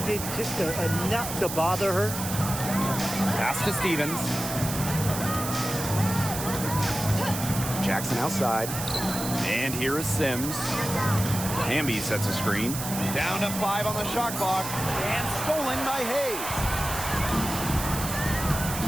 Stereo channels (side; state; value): right; noise; hiss, 6 dB below the sound